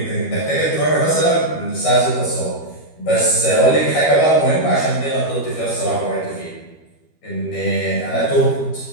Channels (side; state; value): right; late; 13 ms